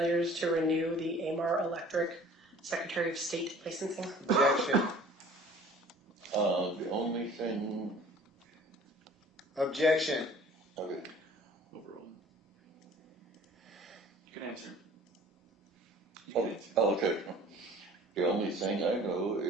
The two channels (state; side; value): normal; both; correlation 0.49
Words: to renew the AMAR Electric Secretary of State licensing? Objection. The only thing. Objection. Okay. Overall. You can answer. You Oh, can answer. okay. The only thing I know